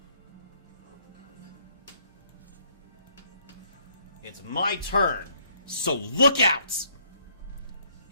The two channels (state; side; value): inverted; both; correlation -0.66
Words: It's my turn, so look out!